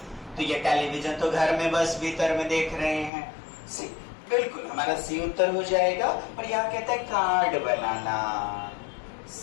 तो ये टेलीविजन तो घर में बस भीतर में देख रहे हैं। बिल्कुल हमारा सी उत्तर हो जाएगा। और यहाँ कहता है कार्ड बनाना,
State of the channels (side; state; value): right; drops out; at 3.1 s